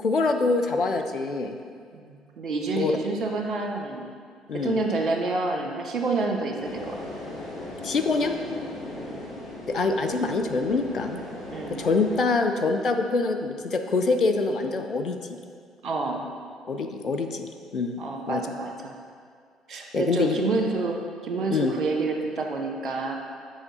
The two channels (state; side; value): normal; both; correlation 0.62